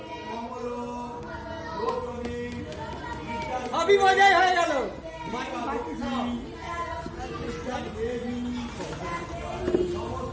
মজাই হয়ে গেল।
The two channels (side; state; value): both; identical; correlation 1.00